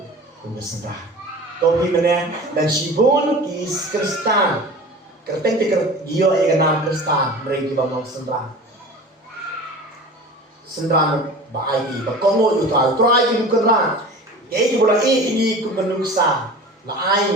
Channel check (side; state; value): both; normal; correlation 0.37